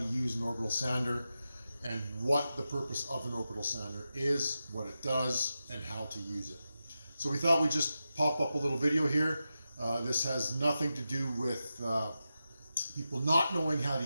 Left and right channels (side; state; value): both; inverted; correlation -0.91